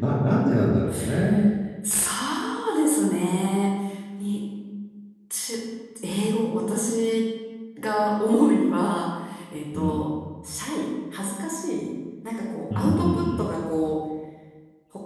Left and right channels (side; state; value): both; identical; correlation 1.00